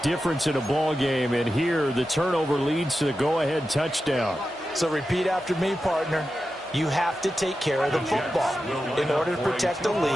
in a ball game, and here the turnover leads to the go-ahead touchdown. So repeat after me, partner. You have to take care of the football. In order to protect the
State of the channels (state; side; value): normal; both; correlation 0.91